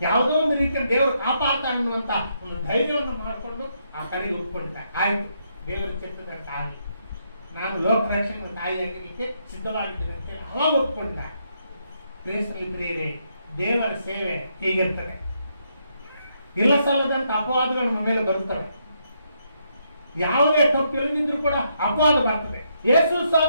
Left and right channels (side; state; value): both; inverted; correlation -0.77